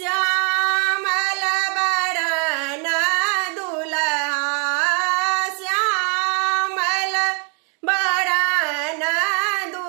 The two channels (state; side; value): quieter; left; 37.7 dB